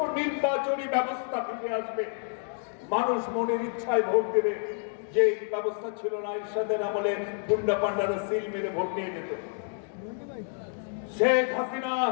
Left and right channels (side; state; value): right; silent; 59 dB below the other